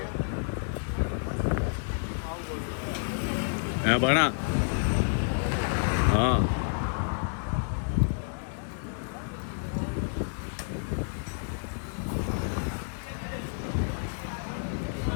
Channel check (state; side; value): silent; right; digital silence